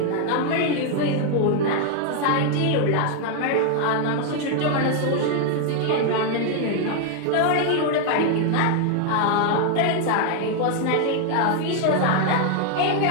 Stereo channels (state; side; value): different; both; correlation 0.00